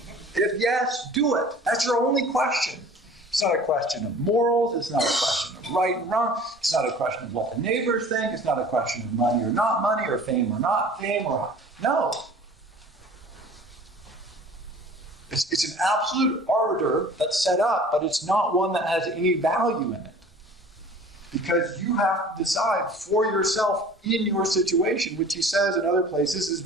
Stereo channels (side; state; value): both; normal; correlation 0.46